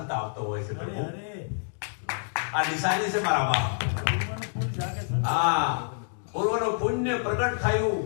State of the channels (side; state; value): right; silent; digital silence